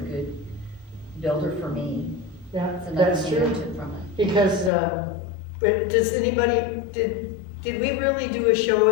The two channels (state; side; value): drops out; right; at 4.7 s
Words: good builder for me. Yeah, That's another that's thing I true. took from it. Because, but does anybody, did we really do a show